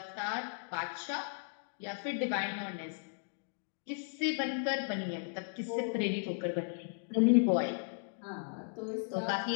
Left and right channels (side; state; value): right; silent; digital silence